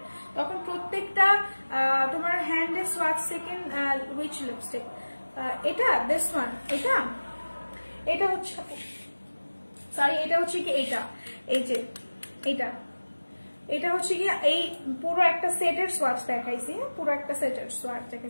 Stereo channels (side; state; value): both; inverted; correlation -1.00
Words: তখন প্রত্যেকটা তোমার হ্যান্ডে সোয়াচ সেকেন্ড উইচ লিপস্টিক, এটা দিস ওয়ান, এটা হচ্ছে সরি, এটা হচ্ছে কি এটা, এই যে এটা হচ্ছে কি এই পুরো একটা সেটের সোয়াচ দেখাইছি, পুরো একটা সেটের সোয়াচ